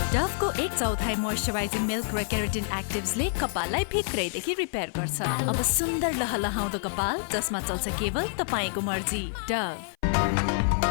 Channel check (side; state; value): right; silent; 56 dB below the other